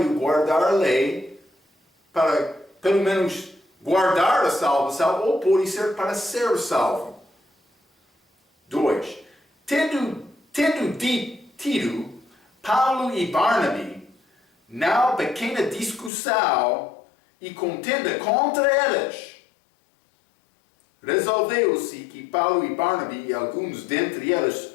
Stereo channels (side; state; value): right; drops out; at 16.1 s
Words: guardar a lei para, pelo menos, guardar a salvação, ou pode ser para ser salvo. 2. Tendo tido Paulo e Barnabé, na pequena discussão e contenda contra eles, resolveu-se que Paulo e Barnabé e alguns dentre eles